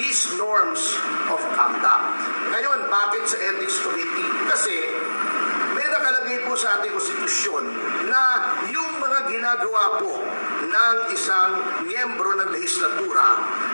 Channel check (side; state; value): both; inverted; correlation -1.00